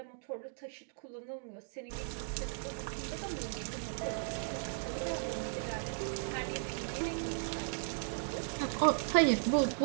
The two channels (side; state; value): left; silent; digital silence